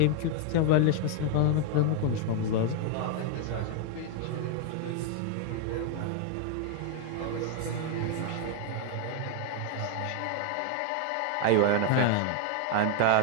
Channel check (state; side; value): different; both; correlation 0.00